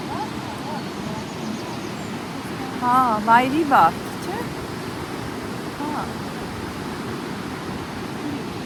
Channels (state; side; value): identical; both; correlation 1.00